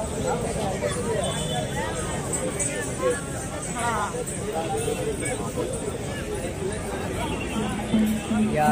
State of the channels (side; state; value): both; identical; correlation 1.00